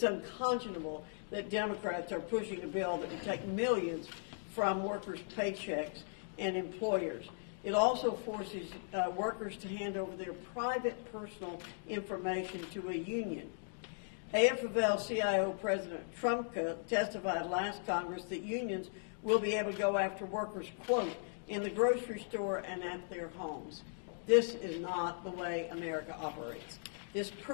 unconscionable that Democrats are pushing a bill that would take millions from workers' paychecks and employers. It also forces workers to hand over their private personal information to a union. AFL-CIO President Trumka testified last Congress that unions will be able to go after workers, quote, in the grocery store and at their homes. This is not the way America operates. This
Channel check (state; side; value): silent; right; digital silence